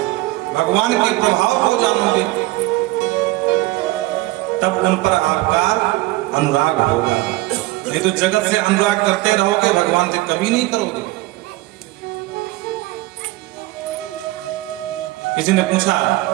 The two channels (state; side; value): quieter; left; 19.3 dB